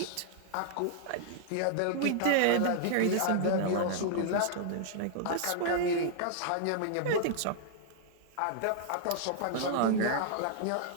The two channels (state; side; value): different; both; correlation -0.01